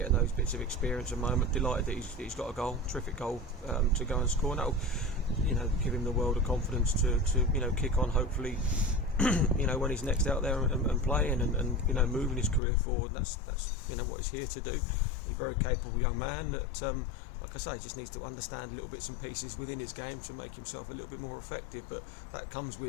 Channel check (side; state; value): right; drops out; at 12.6 s